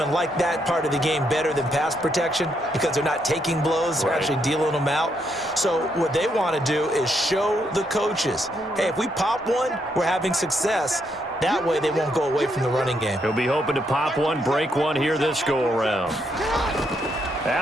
like that part of the game better than pass protection because they're not taking blows, they're actually dealing them out. So what they want to do is show the coaches, hey, if we pop one, we're having success. That way they won't go away from the running game. He'll be hoping to pop one, break one here this go-around.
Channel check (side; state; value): both; normal; correlation 0.77